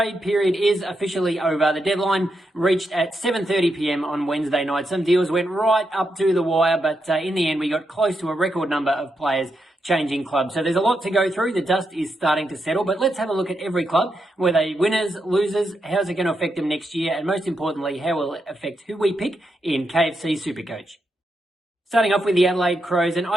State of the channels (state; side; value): normal; both; correlation 0.83